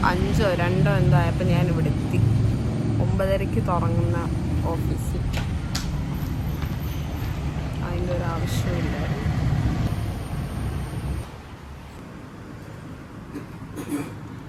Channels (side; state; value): both; identical; correlation 1.00